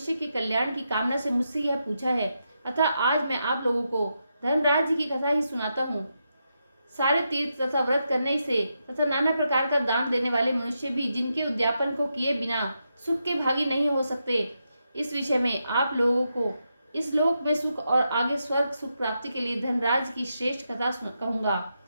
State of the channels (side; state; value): both; inverted; correlation -0.84